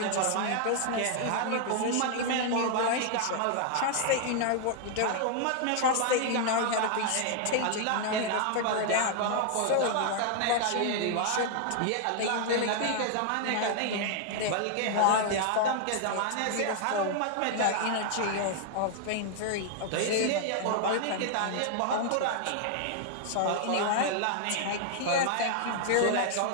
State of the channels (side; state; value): both; different; correlation 0.00